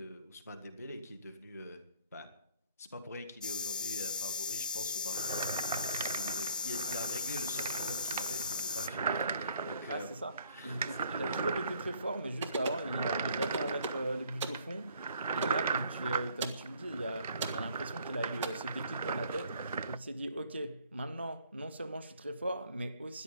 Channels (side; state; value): both; inverted; correlation -0.60